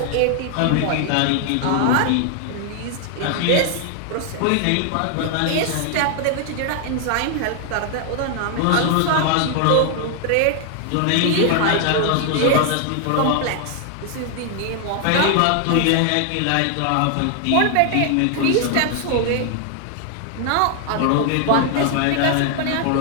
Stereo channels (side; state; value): both; different; correlation 0.00